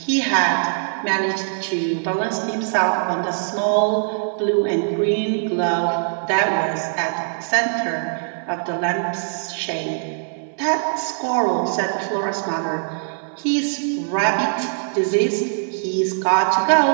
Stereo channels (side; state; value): left; silent; 65 dB below the other